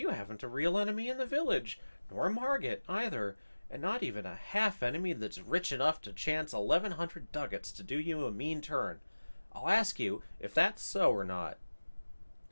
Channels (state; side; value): inverted; both; correlation -1.00